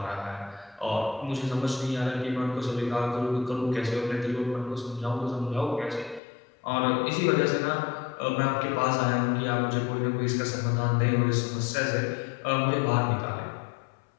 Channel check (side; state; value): right; drops out; at 6.2 s